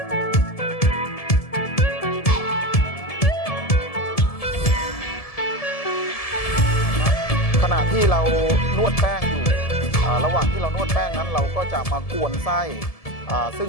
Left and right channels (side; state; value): right; late; 1.7 ms